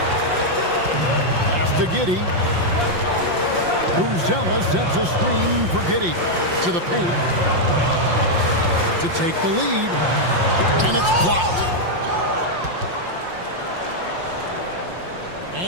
Pass to Giddey. Buzelis sets a screen for Giddey to the paint to take the lead, and it's blocked.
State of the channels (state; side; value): late; left; 5.7 ms